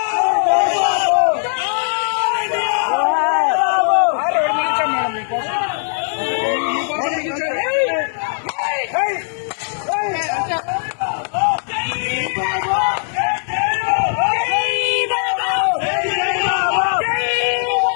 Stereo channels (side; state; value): right; silent; 67 dB below the other